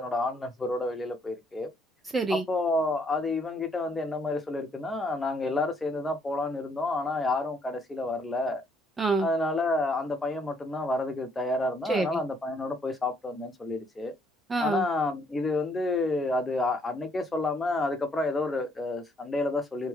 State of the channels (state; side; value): normal; both; correlation 0.68